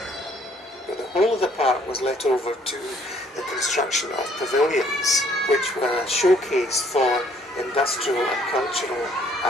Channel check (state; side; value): normal; both; correlation 0.63